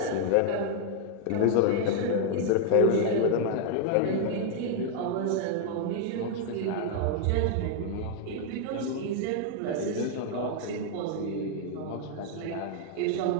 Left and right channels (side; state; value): both; different; correlation 0.00